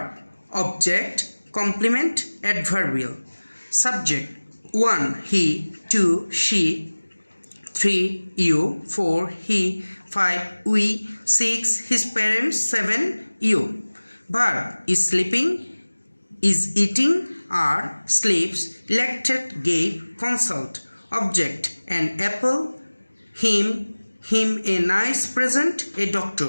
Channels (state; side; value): inverted; both; correlation -1.00